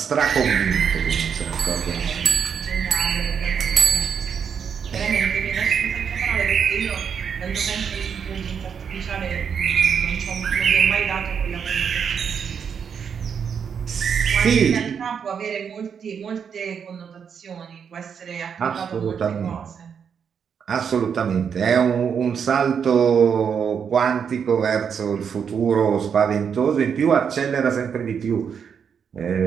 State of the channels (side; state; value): left; quieter; 7.1 dB